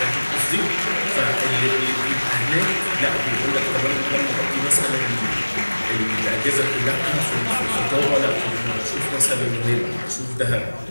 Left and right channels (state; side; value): inverted; both; correlation -1.00